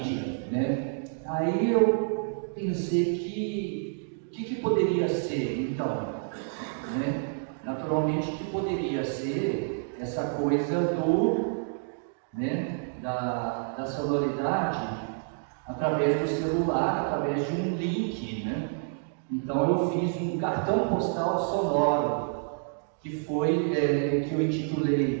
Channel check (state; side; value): silent; left; digital silence